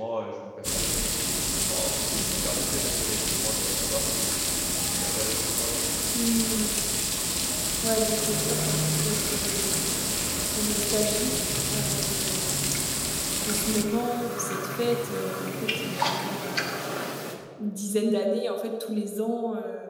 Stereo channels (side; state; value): both; identical; correlation 1.00